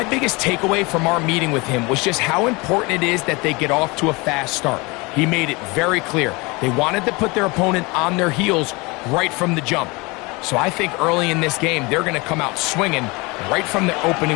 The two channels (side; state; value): right; quieter; 25.7 dB